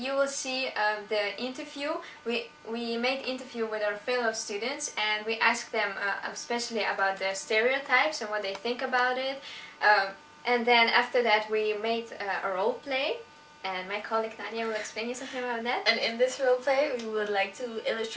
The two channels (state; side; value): identical; both; correlation 1.00